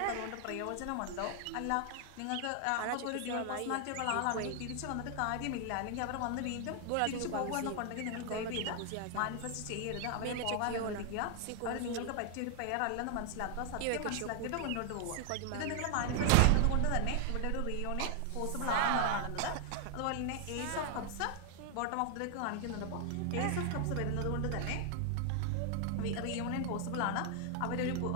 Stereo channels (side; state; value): both; different; correlation 0.00